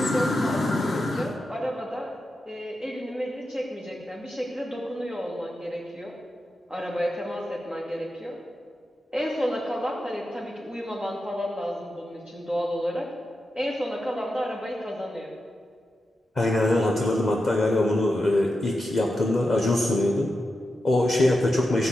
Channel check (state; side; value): normal; both; correlation 0.89